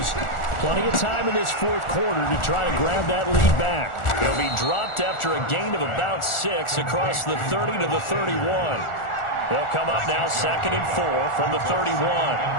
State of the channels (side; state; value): right; late; 1.4 ms